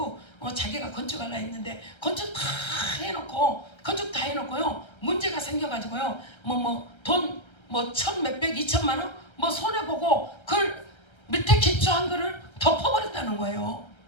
자기가 건축하려 했는데 건축 다 해놓고요 문제가 생겨가지고요 돈 1,000 몇백 2천만 원 손해보고 그걸 밑에 기초한 거를 덮어버렸다는 거예요.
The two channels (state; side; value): late; right; 1.3 ms